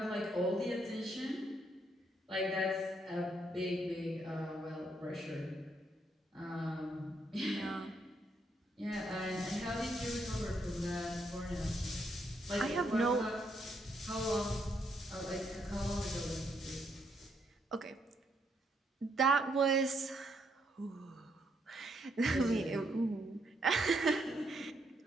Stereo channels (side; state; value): both; normal; correlation 0.75